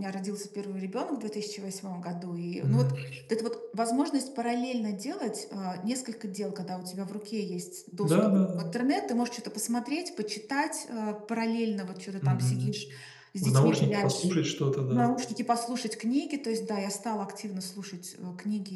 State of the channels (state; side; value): identical; both; correlation 1.00